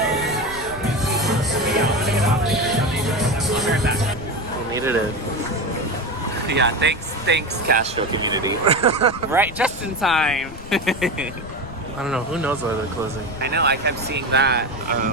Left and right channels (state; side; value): noise; left; rumble, 14 dB below the sound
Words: I'll be right back. We needed it. Yeah, thanks Castro community. Right, just in time. I don't know. Who knows why they're closing? I know, I kept seeing that.